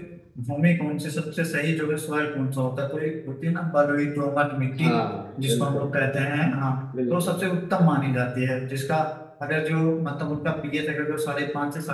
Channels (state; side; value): identical; both; correlation 1.00